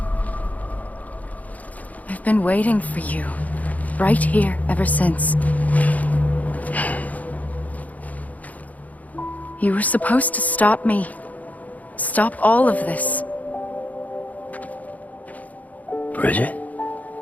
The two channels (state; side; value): late; right; 0.075 ms